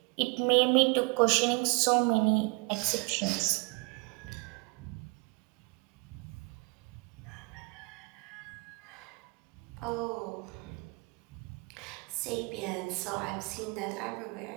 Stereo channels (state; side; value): quieter; left; 30.7 dB